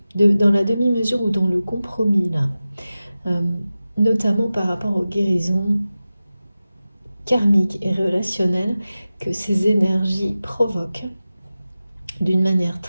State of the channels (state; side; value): inverted; both; correlation -0.95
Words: demi-mesure ou dans le compromis là, notamment par rapport aux guérisons karmiques et relationnelles que ces énergies provoquent d'une manière